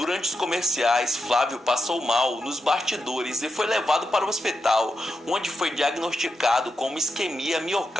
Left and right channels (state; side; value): normal; both; correlation 0.87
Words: os comerciais, Flávio passou mal nos bastidores e foi levado para o hospital, onde foi diagnosticado com uma isquemia